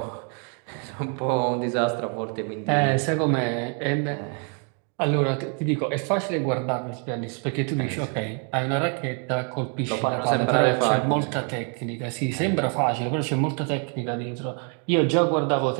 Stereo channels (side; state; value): left; quieter; 40.0 dB